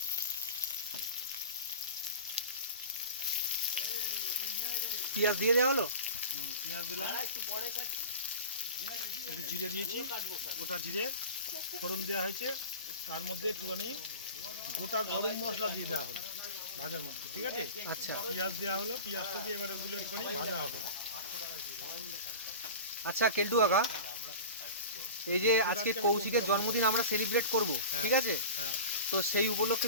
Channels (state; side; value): inverted; both; correlation -0.34